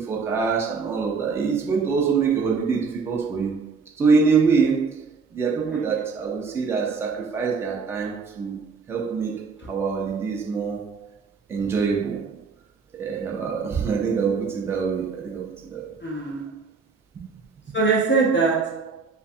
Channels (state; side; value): quieter; left; 5.0 dB